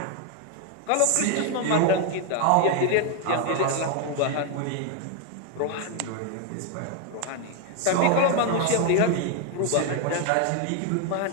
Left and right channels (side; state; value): both; different; correlation 0.01